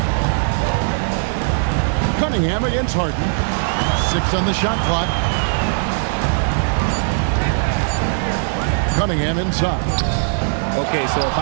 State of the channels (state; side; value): silent; left; digital silence